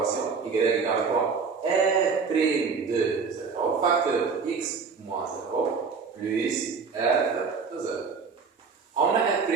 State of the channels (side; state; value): left; quieter; 5.3 dB